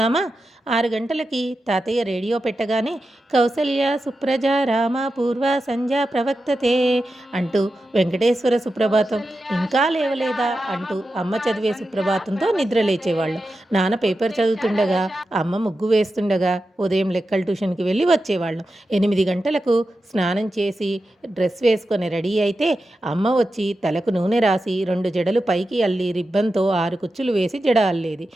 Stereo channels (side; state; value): both; normal; correlation 0.91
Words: 6 గంటలకి తాతయ్య రేడియో పెట్టగానే కౌసల్య సుప్రజ రామ పూర్వ సంధ్య ప్రవక్తతే అంటూ వెంకటేశ్వర సుప్రభాతం, ఇంకా లేవలేదా అంటూ అమ్మ చదివే సుప్రభాతంతో నిద్ర లేచేవాళ్ళం. నాన్న పేపర్ చదువుతుండగా, అమ్మ ముగ్గు వేస్తుండగా ఉదయం లెక్కల ట్యూషన్కి వెళ్ళి వచ్చేవాళ్ళం. 8 గంటలకు స్నానం చేసి డ్రెస్ వేసుకొని రెడీ అయితే అమ్మ వచ్చి తలకు నూనె రాసి 2 జడలు పైకి అల్లి రిబ్బన్తో 6 కుచ్చులు వేసి జడ అల్లేది.